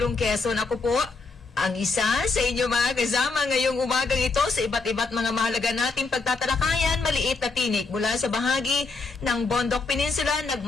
Quezon. Ako po, ang isa sa inyo mga kasama ngayong umagang ito sa iba't mga mahalaga nating pagtatalakayan, maliit na tinik mula sa bahagi ng Bondok Peninsula,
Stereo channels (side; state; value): right; quieter; 4.1 dB